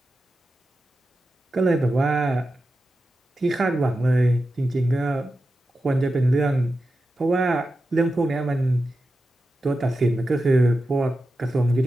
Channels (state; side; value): normal; both; correlation 0.91